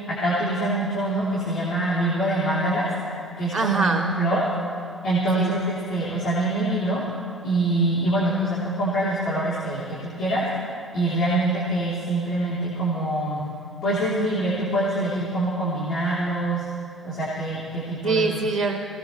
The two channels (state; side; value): normal; both; correlation 0.46